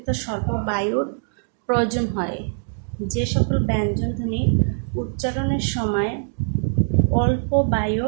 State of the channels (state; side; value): silent; left; digital silence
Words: স্বল্প বায়ুর প্রয়োজন হয়, যে সকল ব্যঞ্জনধ্বনি উচ্চারণের সময় অল্প